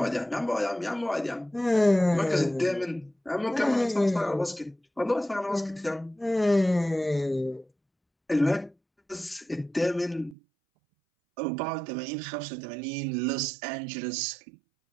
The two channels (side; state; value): left; drops out; at 10.4 s